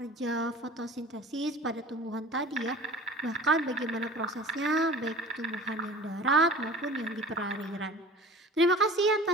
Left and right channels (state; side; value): normal; both; correlation 0.41